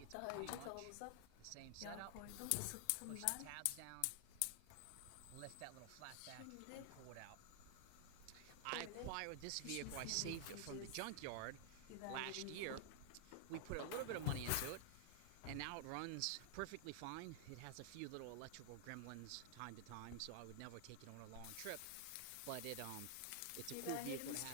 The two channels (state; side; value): different; both; correlation 0.00